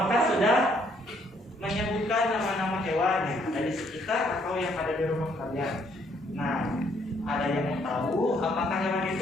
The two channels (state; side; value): normal; both; correlation 0.68